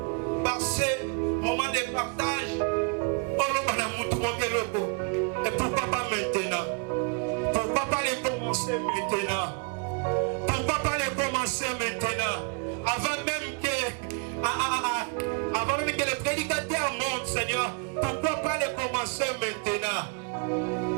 par ces moments de partage, et pourquoi pas maintenant? Pourquoi pas les commencer maintenant? Pourquoi pas les commencer maintenant? Avant même que les prédicateurs montent, Seigneur, pourquoi pas les commencer maintenant?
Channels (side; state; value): left; quieter; 37.6 dB